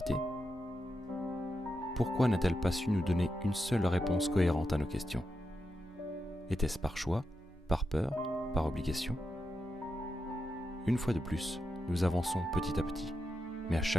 Pourquoi n'a-t-elle pas su nous donner une seule réponse cohérente à nos questions? Était-ce par choix, par peur, par obligation? Une fois de plus, nous avançons petit à petit, mais à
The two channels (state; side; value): normal; both; correlation 0.87